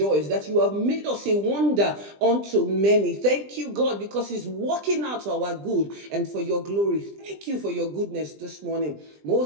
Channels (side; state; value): left; late; 20 ms